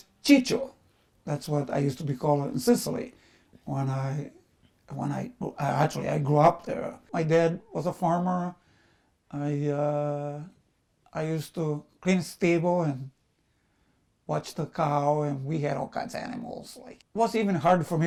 Chicho. That's what I used to be called in Sicily when I grew up there. My dad was a farmer. I uh, I used to clean stable and watch the cow, and we had all kinds of animals. Like it was even hard for me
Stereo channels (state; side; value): identical; both; correlation 1.00